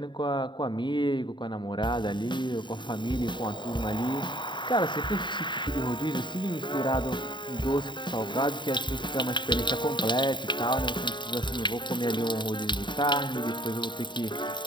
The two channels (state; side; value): late; right; 0.23 ms